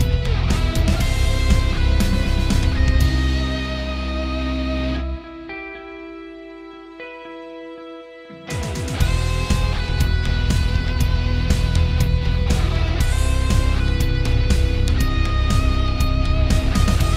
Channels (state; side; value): identical; both; correlation 1.00